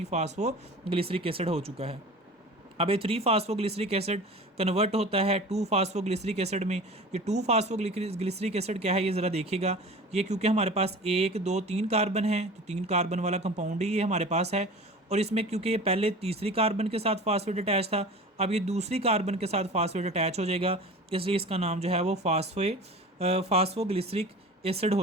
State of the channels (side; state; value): both; normal; correlation 0.38